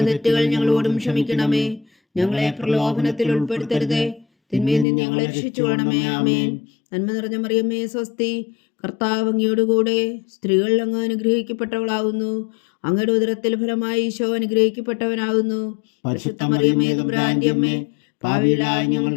തെറ്റുകൾ ഞങ്ങളോടും ക്ഷമിക്കണമേ. ഞങ്ങളെ പ്രലോഭനത്തിൽ ഉൾപ്പെടുത്തരുതേ, തിന്മയിൽ നിന്ന് ഞങ്ങളെ രക്ഷിച്ചുകൊള്ളണമേ. ആമേൻ. നന്മ നിറഞ്ഞ മറിയമേ സ്വസ്തി, കർത്താവ് അങ്ങയോടുകൂടെ സ്ത്രീകൾ അങ്ങ് അനുഗ്രഹിക്കപ്പെട്ടവളാകുന്നു. അങ്ങയുടെ ഉദരത്തിൽ ഫലമായി ഈശോ അനുഗ്രഹിക്കപ്പെട്ടവനാകുന്നു. പരിശുദ്ധ മറിയമേ തമ്പുരാന്റെ അമ്മേ, പാപികളായ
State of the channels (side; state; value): right; drops out; at 4.9 s